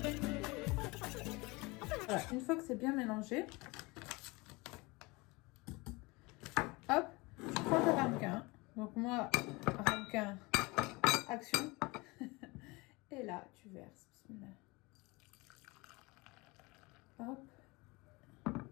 Voilà, une fois que c'est bien mélangé, hop, tu prends ta ramequin. Donc moi, ramequin, Action. Et là, tu verses. Bismillah. Hop.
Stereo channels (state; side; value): quieter; right; 24.5 dB